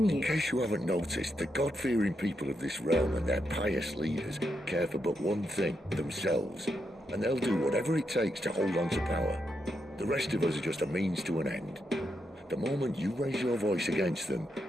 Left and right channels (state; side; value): normal; both; correlation 0.82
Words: In case you haven't noticed, the God-fearing people of this realm and their pious leaders care for but one thing, themselves. And they'll do whatever it takes to hold on to power. The rest of us are just a means to an end. The moment you raise your voice against them,